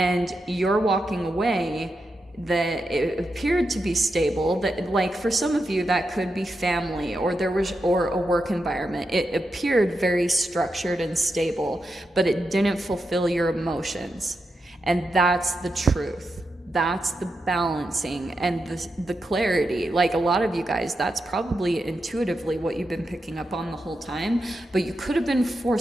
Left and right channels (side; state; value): both; normal; correlation 0.87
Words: you're walking away. That it appeared to be stable, that like for some of you that could be family or a work environment. It appeared very structured and stable, but it didn't fulfill your emotions. And that's the truth. That's the balancing and the clarity. Like a lot of you guys, that's probably intuitively what you've been picking up on the whole time, but you could have been